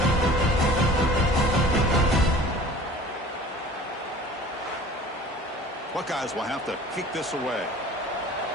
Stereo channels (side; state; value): both; normal; correlation 0.45